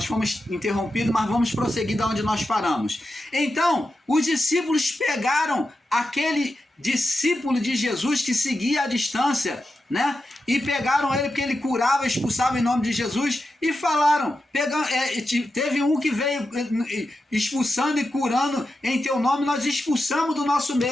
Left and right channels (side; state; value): both; normal; correlation 0.89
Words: fomos interrompidos, mas vamos prosseguir da onde nós paramos. Então, os discípulos pegaram aquele discípulo de Jesus que seguia à distância, né? E pegaram ele porque ele curava, expulsava em nome de Jesus e falaram, teve um que veio expulsando e curando em teu nome, nós expulsamos do nosso